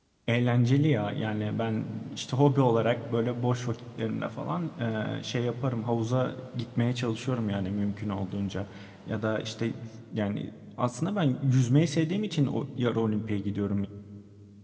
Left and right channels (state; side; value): identical; both; correlation 1.00